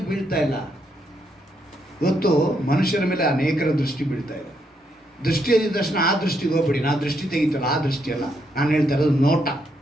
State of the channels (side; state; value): both; normal; correlation 0.77